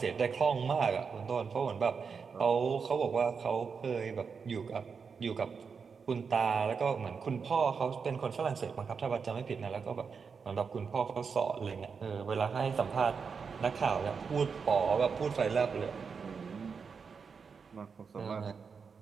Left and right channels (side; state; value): left; quieter; 5.7 dB